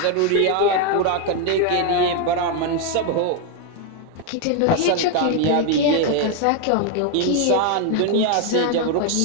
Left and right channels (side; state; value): both; different; correlation 0.01